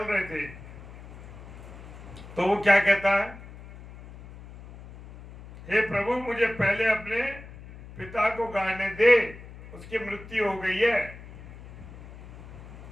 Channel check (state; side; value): noise; left; hum, 16 dB below the sound